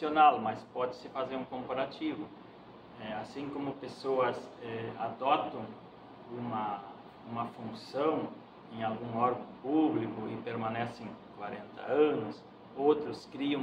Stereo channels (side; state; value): both; identical; correlation 1.00